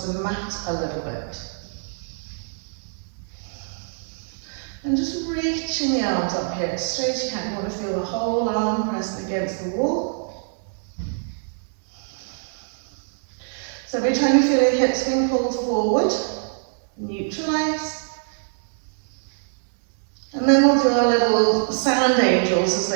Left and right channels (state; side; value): silent; left; digital silence